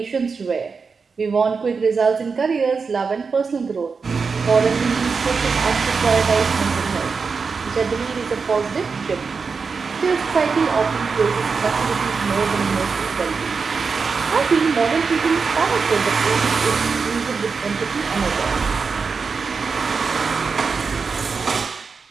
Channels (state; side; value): quieter; left; 5.1 dB